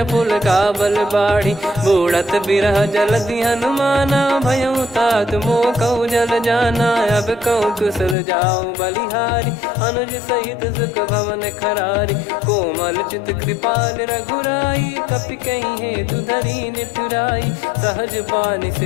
पुल काबल बाढ़ी, बूढ़त बिरह जलधि हनुमाना। भयउ तात मोह कहु जल जाना, अब कहु कुशल जाऊं बलिहारी। अनुज सहित सुख भवन खरारी, कोमल चित कृपाल रघुराई। कपि कहीं हेतु धरी निठुराई, सहज पानि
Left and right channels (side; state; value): right; drops out; at 8.2 s